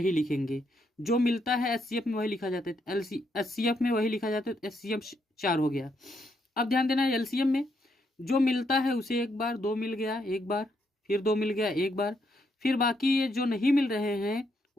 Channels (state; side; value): normal; both; correlation 0.77